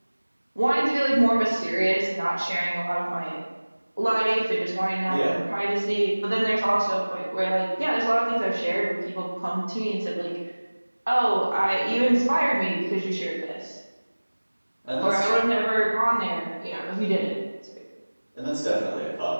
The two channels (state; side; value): inverted; both; correlation -1.00